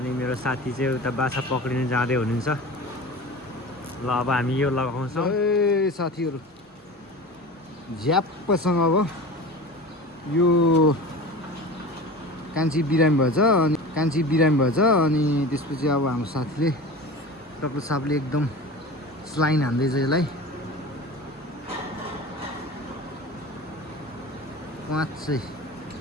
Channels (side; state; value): both; normal; correlation 0.34